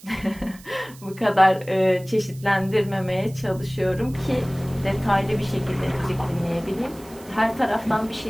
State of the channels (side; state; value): right; noise; hiss, 22 dB below the sound